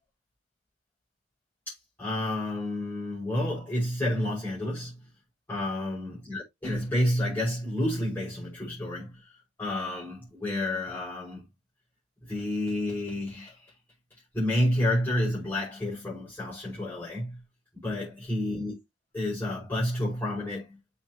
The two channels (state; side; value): normal; both; correlation 0.79